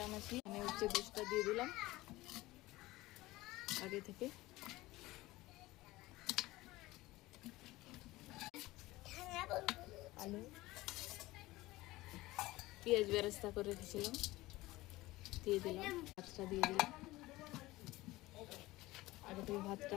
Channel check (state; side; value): quieter; right; 18.9 dB